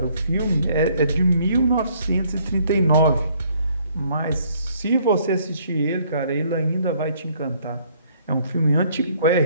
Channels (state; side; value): inverted; both; correlation -0.64